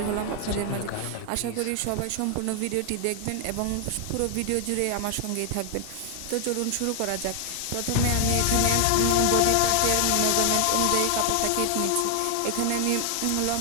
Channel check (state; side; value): different; both; correlation 0.00